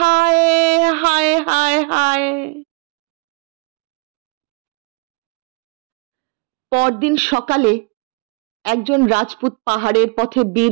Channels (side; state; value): left; quieter; 28.2 dB